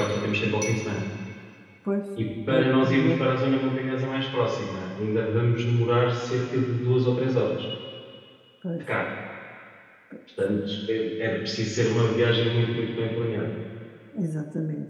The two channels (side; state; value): both; identical; correlation 1.00